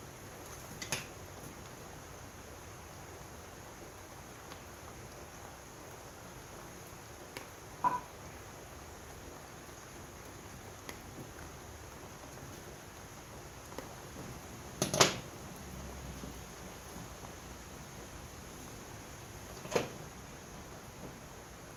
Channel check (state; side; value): identical; both; correlation 1.00